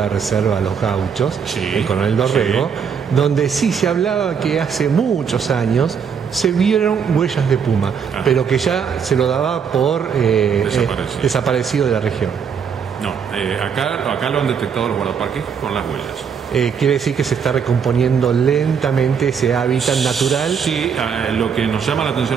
reserva Los Gauchos, el Coronel Dorrego, donde sí se hablaba que hace muchos años se vieron huellas de puma, pero que ya se lo daba por desaparecido de la región. No, acá lo han detectado los guardaparques con las huellas. Quiere decir que se está recomponiendo lentamente ese hábitat natural. Sí, lo que nos llama la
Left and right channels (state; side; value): quieter; left; 6.9 dB